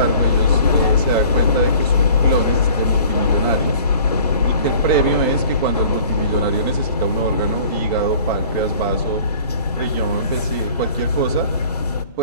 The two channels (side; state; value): both; inverted; correlation -0.49